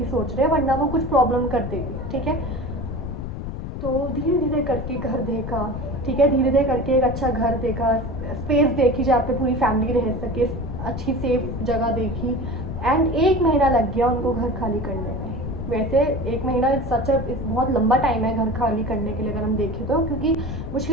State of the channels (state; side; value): noise; left; rumble, 6 dB below the sound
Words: सोच रहे हैं, वरना वो कुछ प्रॉब्लम कर देगी, ठीक है। तो धीरे धीरे करके घर देखा, ठीक है, धीरे धीरे करके एक अच्छा घर देखा, स्पेस देखी जहाँ पे पूरी फैमिली रह सके, अच्छी सेफ जगह देखी। एंड 1 महीना लग गया उनको घर खाली करने में। वैसे 1 महीना सच बहुत लंबा टाइम है घर खाली करने के लिए अगर हम देखें तो, क्योंकि